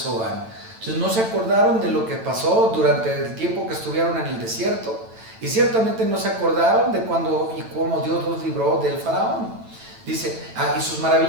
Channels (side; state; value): left; late; 9.0 ms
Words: Entonces no se acordaron de lo que pasó durante el tiempo que estuvieron en el desierto, y ciertamente no se acordaron de cuándo y cómo Dios los libró del faraón. Dice, y sus